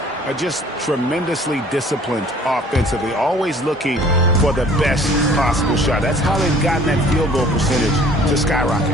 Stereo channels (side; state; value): both; normal; correlation 0.53